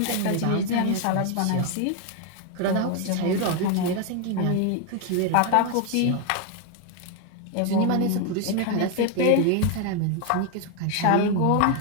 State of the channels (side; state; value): both; different; correlation 0.01